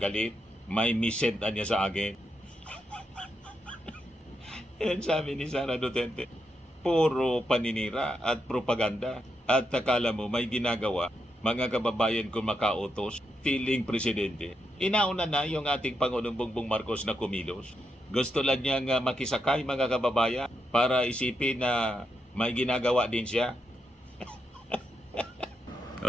May misent niya sa akin. Yan sabi ni Sara Duterte. Puro paninira at propaganda. At akala mo may ginagawa, mga kababayan kung makautos, feeling presidente. Inauna na yung ating Pangulong Bongbong Marcos na kumilos. Gusto lang niyang makisakay mga kababayan para isipin na may ginagawa din siya.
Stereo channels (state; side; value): normal; both; correlation 0.83